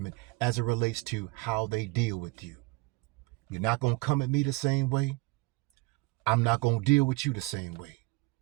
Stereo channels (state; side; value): quieter; left; 23.5 dB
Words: as it relates to how they deal with you. You're not going to come at me the same way. I'm not going to deal with you the same way.